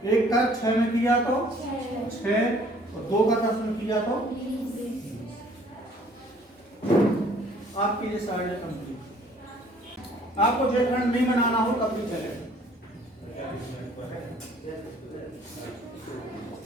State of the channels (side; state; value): both; normal; correlation 0.57